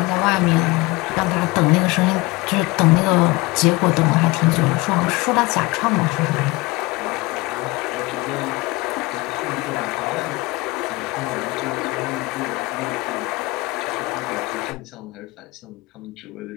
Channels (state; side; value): quieter; right; 22.7 dB